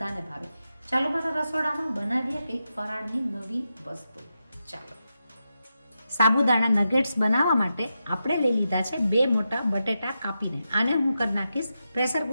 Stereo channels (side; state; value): both; inverted; correlation -0.88